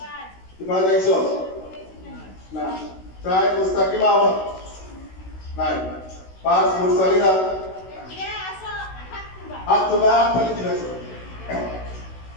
ইফাত আইছো? না। চার মুস্তাকিম আহমদ নাই। পাঁচ মুরসালিনা। হাত তোলা, হাত তালি দিয়েছো।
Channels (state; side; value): late; right; 16 ms